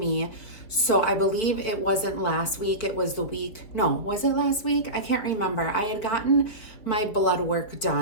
So I believe it wasn't last week. It was the week. No, was it last week? I can't remember. I had gotten my blood work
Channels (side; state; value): right; late; 4.6 ms